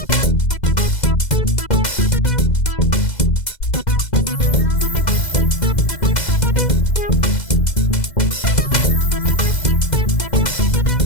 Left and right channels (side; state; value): right; late; 2.0 ms